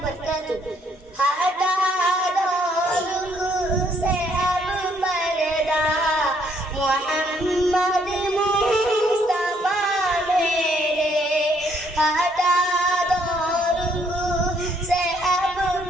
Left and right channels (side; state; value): both; normal; correlation 0.68